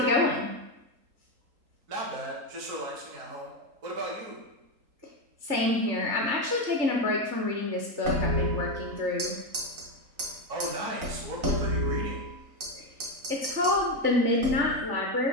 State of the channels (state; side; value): late; left; 3.9 ms